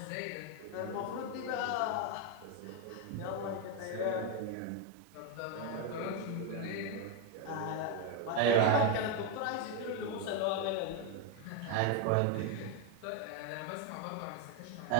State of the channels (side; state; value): both; different; correlation 0.02